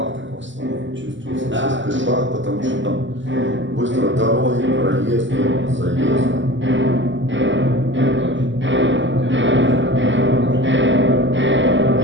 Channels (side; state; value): left; late; 0.54 ms